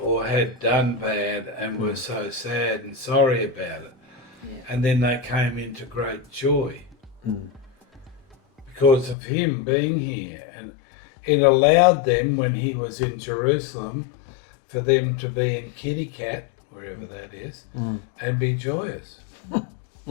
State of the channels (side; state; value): right; drops out; at 9.2 s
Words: had done bad and were so sad and sorry about it. And then they came into great joy because of him being here. And it allowed them, when he was in Jerusalem, for them to be in 𝗙𝗏𝗃, wherever that is, and be joyous.